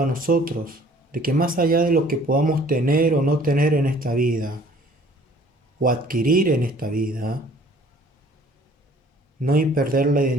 a nosotros, de que más allá de lo que podamos tener o no tener en esta vida, o adquirir en esta vida, no hay perder la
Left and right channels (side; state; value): both; normal; correlation 0.54